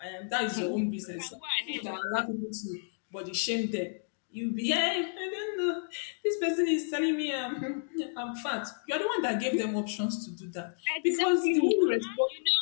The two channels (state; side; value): silent; right; digital silence